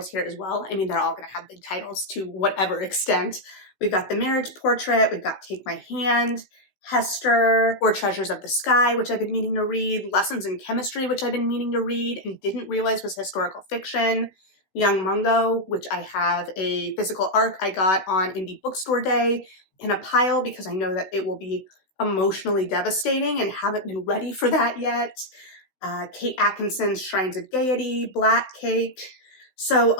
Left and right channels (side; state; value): right; late; 16 ms